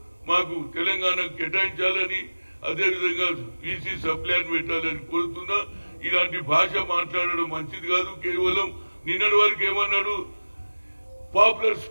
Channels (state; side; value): inverted; both; correlation -1.00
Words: మాకు తెలంగాణకు కేటాయించాలని, అదేవిధంగా బీసీ సప్లైన్ పెట్టాలని కోరుతున్నా. ఇలాంటి భాష మాట్లాడడం మంచిది కాదు. కేవలం నిన్నటి వరకు ఏమన్నాడు, పాపులర్